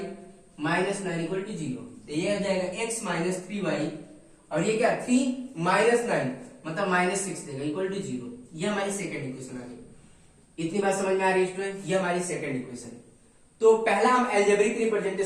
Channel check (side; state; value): both; identical; correlation 1.00